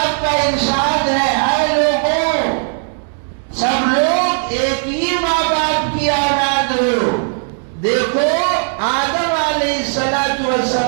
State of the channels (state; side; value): silent; left; digital silence